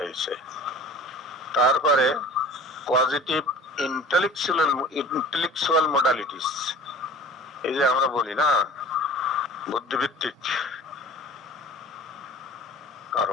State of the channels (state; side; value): normal; both; correlation 0.43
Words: তারপরে পজিটিভ ইন্টেলেকচুয়াল মোডালিটিস, এই যে আমরা বলি না বুদ্ধিভিত্তিক